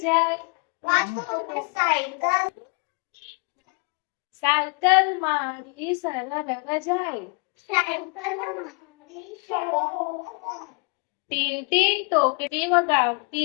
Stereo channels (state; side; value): quieter; right; 34.9 dB